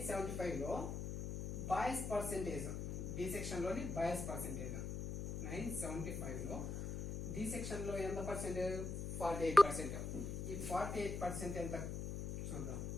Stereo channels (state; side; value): noise; left; hum, 3 dB below the sound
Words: బాయ్స్ పర్సెంటేజ్, డి సెక్షన్లోని బాయ్స్ పర్సెంటేజ్ 975లో డి సెక్షన్లో ఎంత పర్సెంటేజ్? 48%. ఈ 48% ఎంత చూద్దాం.